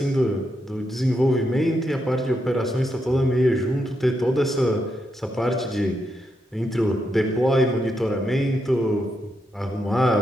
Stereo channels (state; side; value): normal; both; correlation 0.82